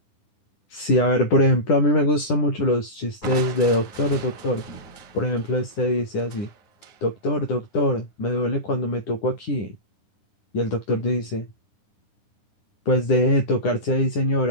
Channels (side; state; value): right; late; 10 ms